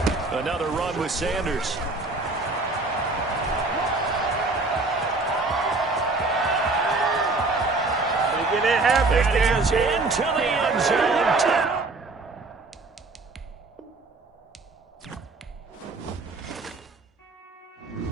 Another run with Sanders. Making it happen. That is into the end zone.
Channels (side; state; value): left; quieter; 3.5 dB